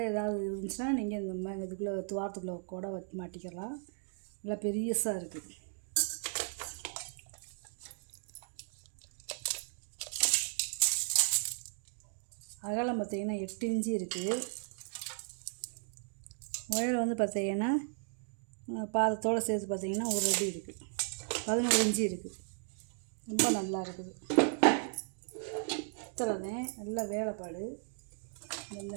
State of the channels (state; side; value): silent; left; 54 dB below the other